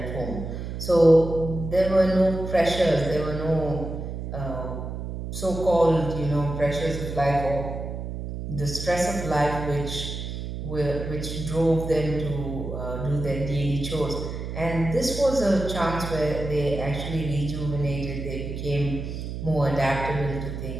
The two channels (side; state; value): right; noise; hum, 6 dB below the sound